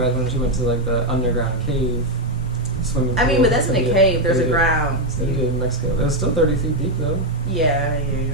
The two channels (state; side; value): normal; both; correlation 0.04